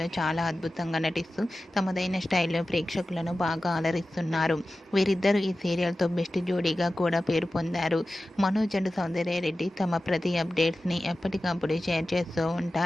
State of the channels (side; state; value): both; normal; correlation 0.95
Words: చాలా అద్భుతంగా నటిస్తూ తమదైన స్టైల్లో ప్రేక్షకులను బాగా అలరిస్తున్నారు. వీరిద్దరూ ఈ సీరియల్తో బెస్ట్ జోడీగా కూడా పేరు పొందారు. మనోజ్ అండ్ సౌందర్య రెడ్డి తమ ప్రతి అప్డేట్స్ని ఎప్పటికప్పుడు షేర్ చేస్తూ